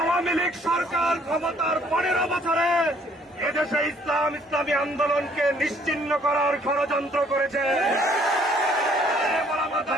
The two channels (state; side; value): normal; both; correlation 0.62